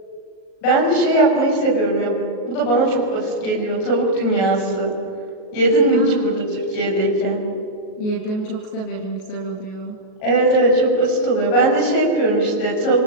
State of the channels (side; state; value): right; late; 38 ms